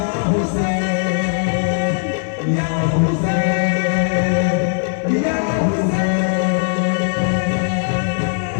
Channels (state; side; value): silent; right; 67 dB below the other